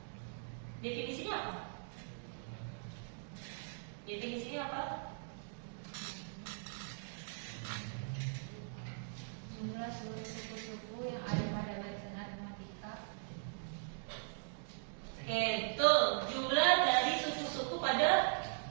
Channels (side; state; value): left; silent; digital silence